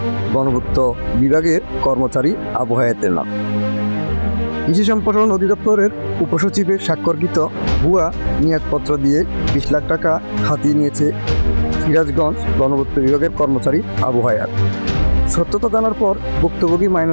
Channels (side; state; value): both; inverted; correlation -1.00